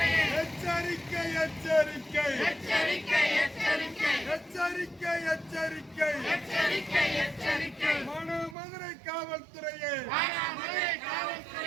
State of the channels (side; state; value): left; drops out; at 8.6 s